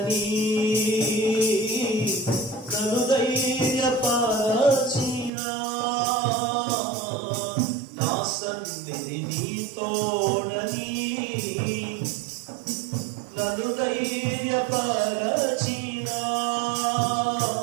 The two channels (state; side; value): drops out; left; at 5.3 s